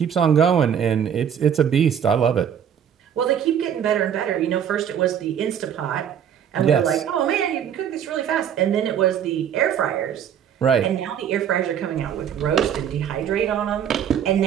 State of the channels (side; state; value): left; quieter; 8.8 dB